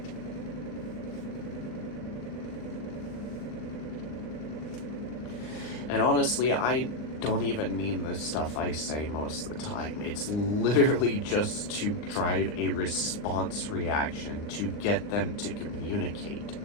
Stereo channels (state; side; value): late; right; 39 ms